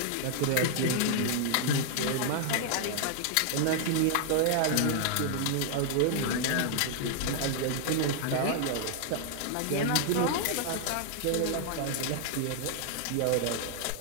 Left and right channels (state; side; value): different; both; correlation 0.00